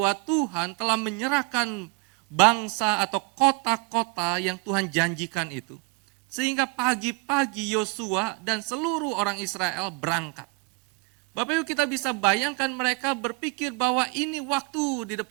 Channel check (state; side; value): quieter; left; 28.3 dB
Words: Tuhan telah menyerahkan bangsa atau kota-kota yang Tuhan janjikan itu. Sehingga pagi-pagi Yosua dan seluruh orang Israel berangkat. Bapak Ibu, kita bisa bayangkan mereka berpikir bahwa ini waktu di